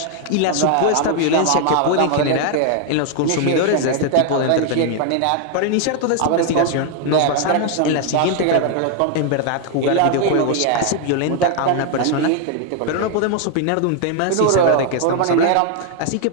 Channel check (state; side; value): different; both; correlation 0.00